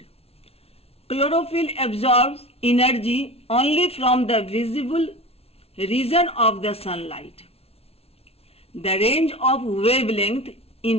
Chlorophyll absorbs energy only from the visible region of the sunlight. The range of wavelength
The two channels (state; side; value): late; right; 0.29 ms